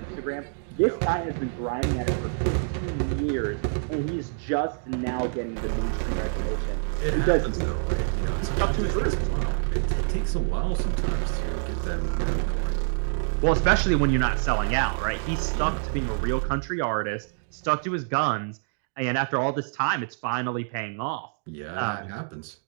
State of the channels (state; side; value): silent; left; digital silence